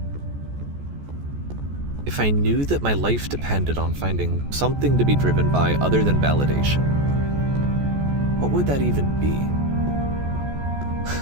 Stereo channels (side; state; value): left; late; 14 ms